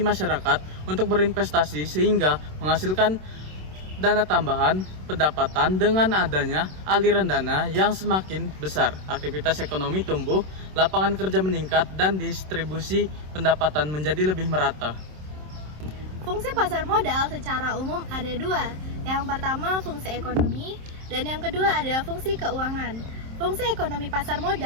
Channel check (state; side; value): late; left; 27 ms